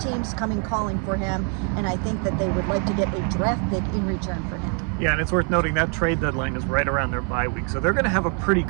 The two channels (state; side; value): quieter; left; 39.4 dB